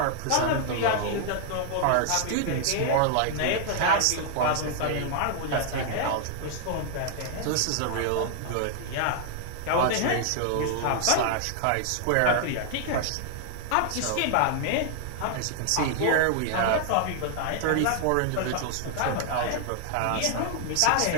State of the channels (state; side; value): different; both; correlation 0.00